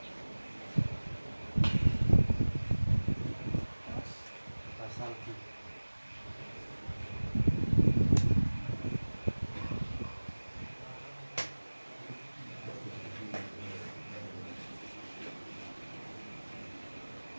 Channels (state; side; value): inverted; both; correlation -1.00